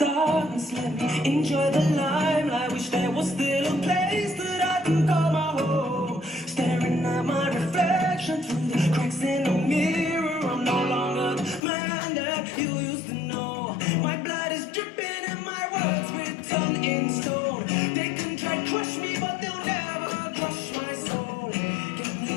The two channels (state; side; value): drops out; right; at 11.6 s